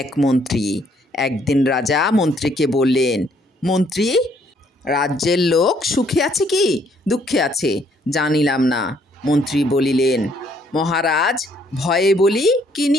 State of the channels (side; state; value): both; normal; correlation 0.67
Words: এক মন্ত্রী। একদিন রাজা মন্ত্রীকে বললেন, মন্ত্রী, রাজ্যের লোক সুখে আছে কি দুঃখে আছে জানিলাম না। মন্ত্রী বলিলেন, মহারাজ, ভয়ে বলি কি